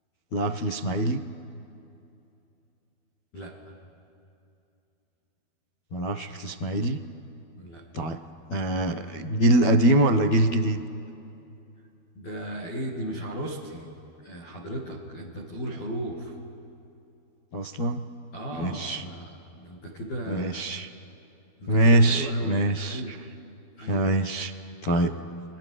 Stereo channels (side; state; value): right; late; 12 ms